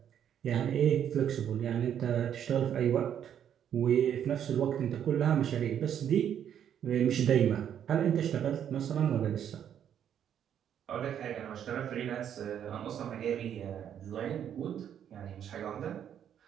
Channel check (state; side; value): quieter; left; 9.4 dB